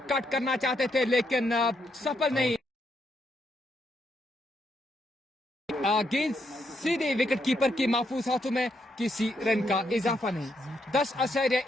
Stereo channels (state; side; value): normal; both; correlation 0.78